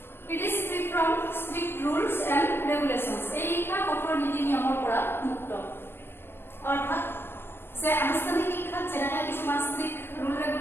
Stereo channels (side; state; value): right; late; 0.11 ms